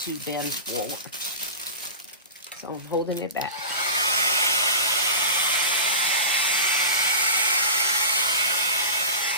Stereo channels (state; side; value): inverted; both; correlation -0.30